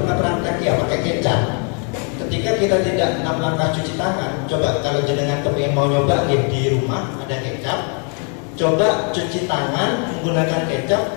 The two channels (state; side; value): quieter; right; 39.7 dB